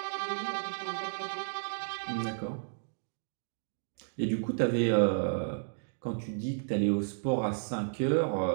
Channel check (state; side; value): silent; left; digital silence